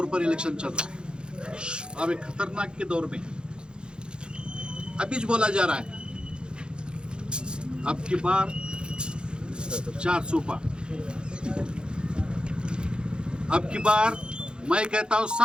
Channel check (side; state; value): left; late; 0.050 ms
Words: पर इलेक्शन चल रहा है। अब एक ख़तरनाक के दौर में अभी जो बोला जा रहा है, अब की बार 400 पार, अब की बार मैं कहता हूँ